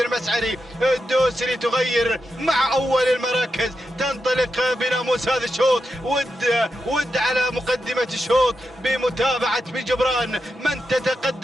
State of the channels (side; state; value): both; normal; correlation 0.87